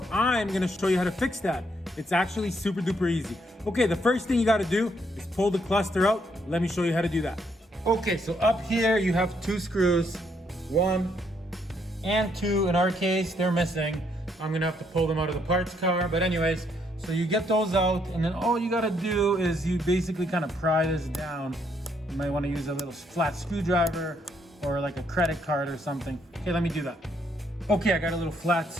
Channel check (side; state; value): both; normal; correlation 0.72